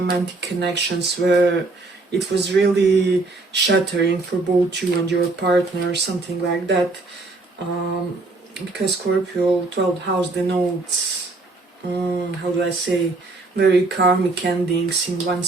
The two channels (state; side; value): quieter; left; 3.3 dB